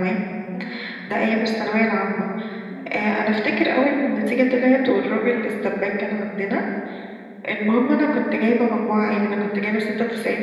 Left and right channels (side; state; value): both; identical; correlation 1.00